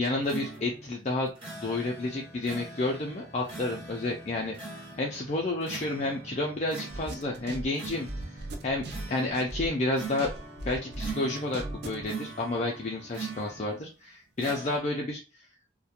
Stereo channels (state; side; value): normal; both; correlation 0.34